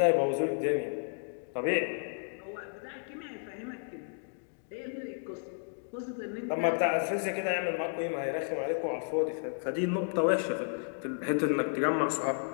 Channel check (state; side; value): silent; right; 55 dB below the other